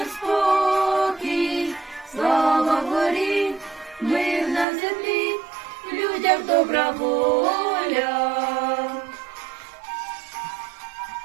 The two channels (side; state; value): left; drops out; at 4.7 s